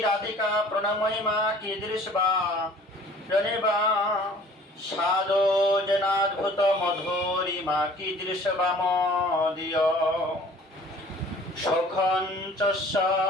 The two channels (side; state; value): both; normal; correlation 0.51